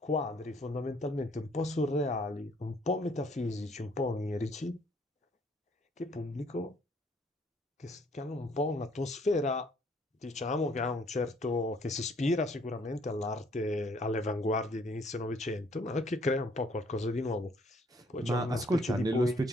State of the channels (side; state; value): both; normal; correlation 0.63